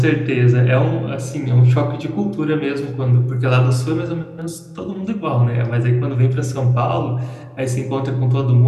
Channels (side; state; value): both; identical; correlation 1.00